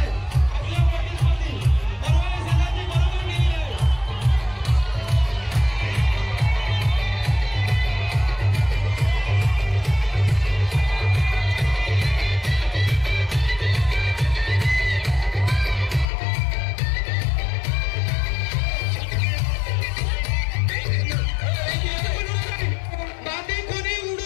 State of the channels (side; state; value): right; drops out; at 16.1 s